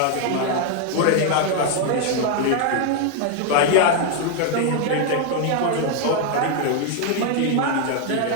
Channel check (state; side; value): different; both; correlation 0.00